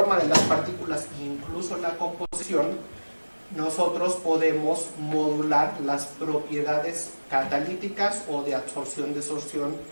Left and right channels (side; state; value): both; inverted; correlation -1.00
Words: de las partículas, incluso la composición, nosotros podemos modular las propiedades catalíticas o de absorción-desorción